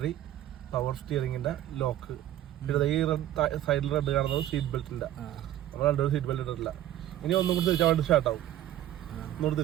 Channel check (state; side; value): quieter; left; 12.6 dB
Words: പവർ സ്റ്റിയറിംഗിന്റെ ലോക്ക്, പിന്നെ ഈ സൈഡിൽ റെഡ് കാണുന്നത് സീറ്റ് ബെൽറ്റിന്റെ. നമ്മൾ രണ്ടുപേരും സീറ്റ് ബെൽറ്റ് ഇട്ടിട്ടില്ല. ഇനി ഒന്നും കൂടി തിരിച്ചാൽ വണ്ടി സ്റ്റാർട്ട് ആവും. ഒന്നുകൂടി